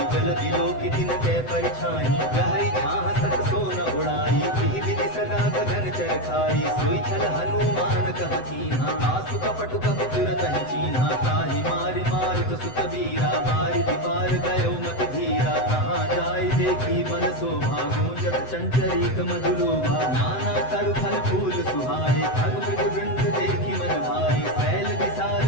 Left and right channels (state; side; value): late; right; 7.9 ms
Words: जल दिलो की दिन के परिछाई गहई छाह सक सोन उड़ाई एहि विधि सदा गगन चर खाई सोई छल हनुमान कह कीन्हा आसु कपट कपि तुरत ही चीन्हा ताहि मारि मारुत सुत वीरा मारि दीवार गयो मति धीरा कहाँ जाय देखी मन शोभा गूंजत चंचरीक मधुलोभा नाना तरु फल फूल सुहाए खग मृग वृंद देखी मन भाई सैल विशाल